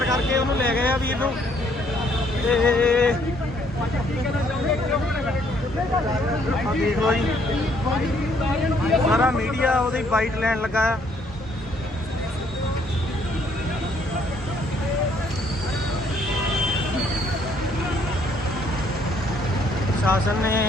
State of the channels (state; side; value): normal; both; correlation 0.66